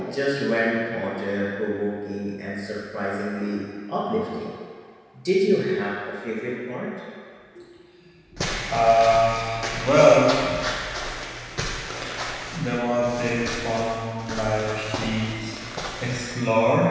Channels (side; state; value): both; identical; correlation 1.00